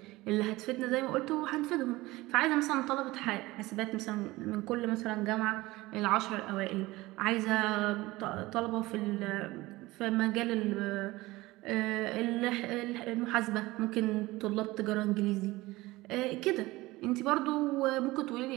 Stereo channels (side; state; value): left; quieter; 19.7 dB